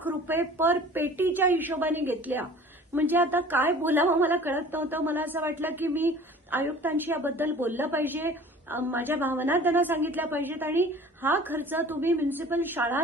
रुपये पर पेटीच्या हिशोबाने घेतल्या. म्हणजे आता काय बोलावं मला कळत नव्हतं. मला असं वाटलं की मी आयुक्तांशी याबद्दल बोललं पाहिजे, माझ्या भावना त्यांना सांगितल्या पाहिजेत आणि हा खर्च तुम्ही म्युनिसिपल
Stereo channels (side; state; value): both; normal; correlation 0.45